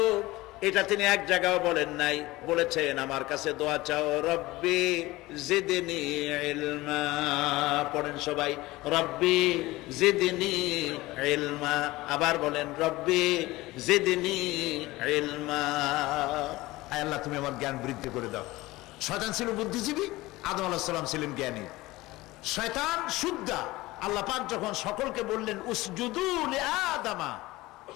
এটা তিনি এক জায়গায় বলেন নাই। বলেছেন আমার কাছে দোয়া চাও, রব্বি জিদনি ইলমা। পড়েন সবাই, রব্বি জিদনি ইলমা। আবার বলেন, রব্বি জিদনি ইলমা। আয় আল্লাহ, তুমি আমার জ্ঞান বৃদ্ধি করে দাও। শয়তান ছিল বুদ্ধিজীবী, আদম আলাইহিস সালাম ছিলেন জ্ঞানী। শয়তান শুদ্ধা। আল্লাহ পাক যখন সকলকে বললেন উসজুদু লিআদামা,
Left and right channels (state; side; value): quieter; right; 19.4 dB